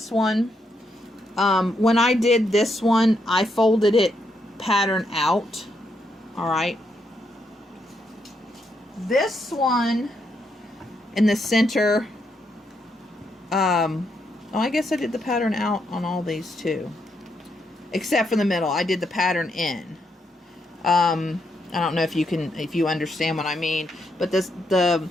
one, when I did this one, I folded it pattern out. All right. This one in the center, oh, I guess I did the pattern out on all these too. Except for the middle. I did the pattern in. I don't know if you understand what I mean, but the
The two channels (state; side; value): normal; both; correlation 0.79